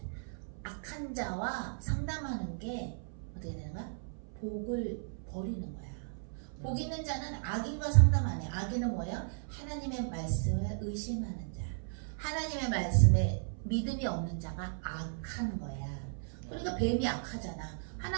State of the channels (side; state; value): left; silent; 54 dB below the other